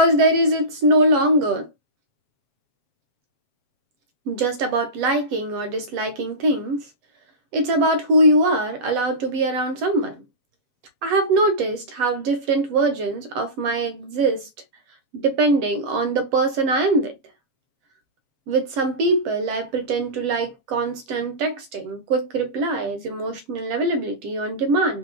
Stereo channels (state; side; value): late; left; 8.1 ms